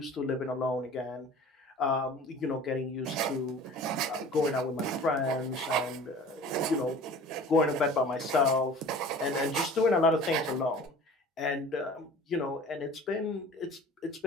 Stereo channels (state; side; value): normal; both; correlation 0.44